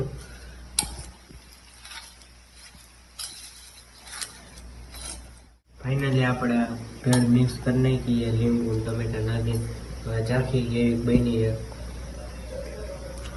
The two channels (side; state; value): both; identical; correlation 1.00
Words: ફાઇનલી આપણે ભેળ મિક્સ કરી નાખીએ. લીંબુ ટમેટા નાખી ચાખી જેવી બની છે.